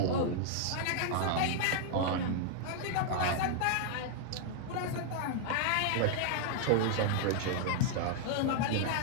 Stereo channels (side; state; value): both; different; correlation 0.00